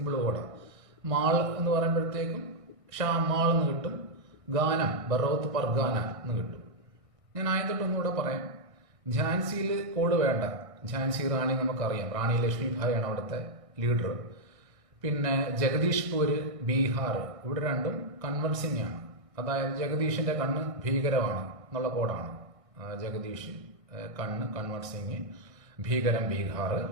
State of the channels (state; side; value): late; left; 1.6 ms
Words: കോഡാ. മാൾ എന്ന് പറയുമ്പോഴത്തേക്കും ഷാമാൾ എന്ന് കിട്ടും. ഗാനം ബറോത്ത് പർഗാന എന്ന് കിട്ടും. ഞാൻ ആയതൊട്ട് ഒന്നുകൂടെ പറയാം. ഝാൻസിയിൽ കോഡ് വേണ്ട. ഝാൻസി റാണി നമുക്കറിയാം. റാണി ലക്ഷ്മിഭായിയാണ് അവിടുത്തെ ലീഡർ. പിന്നെ ജഗദീഷ്പൂര്, ബീഹാർ, ഇവിടെ 2 കൺവൻസിംഗ് ആണ്. അതായത് ജഗദീഷിന്റെ കണ്ണ് ഭീകരമാണ് എന്നുള്ള കോഡാണ്. ജഗദീഷ് കണ്ണ്, കൺവർ സിംഗ്, ഭീകരം, ബീഹാർ.